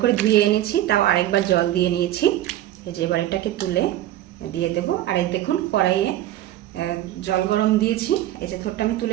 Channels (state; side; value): quieter; left; 13.5 dB